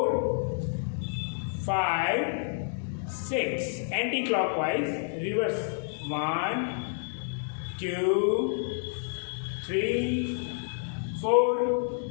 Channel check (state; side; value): silent; right; digital silence